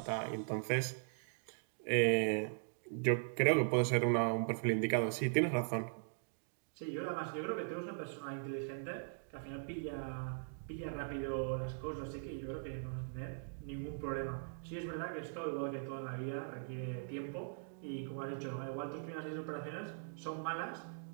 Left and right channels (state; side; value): silent; left; digital silence